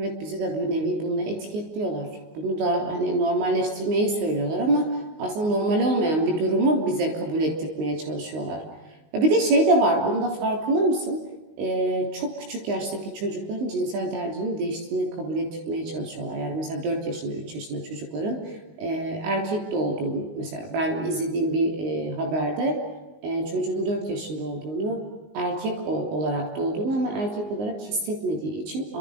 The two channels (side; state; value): left; late; 19 ms